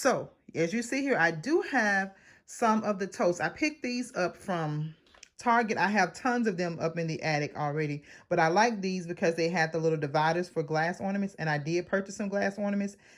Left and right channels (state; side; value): identical; both; correlation 1.00